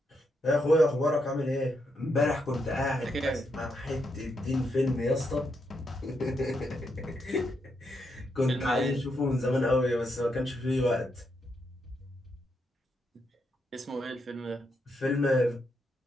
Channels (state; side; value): normal; both; correlation 0.80